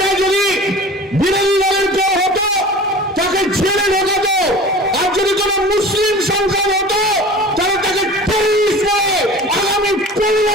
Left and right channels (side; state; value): both; normal; correlation 0.40